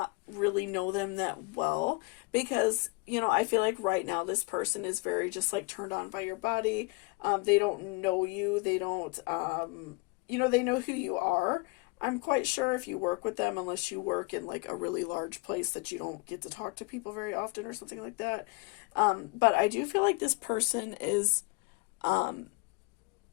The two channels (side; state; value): right; quieter; 27.7 dB